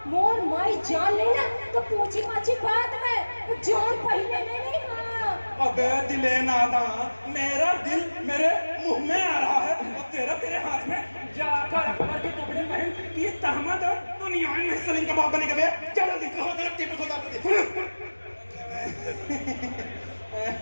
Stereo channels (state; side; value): inverted; both; correlation -1.00